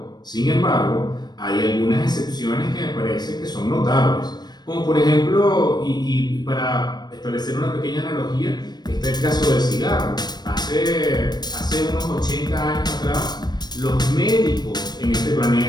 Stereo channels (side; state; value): right; late; 0.20 ms